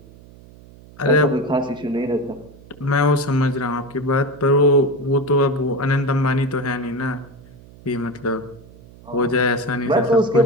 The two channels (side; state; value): right; noise; hum, 22 dB below the sound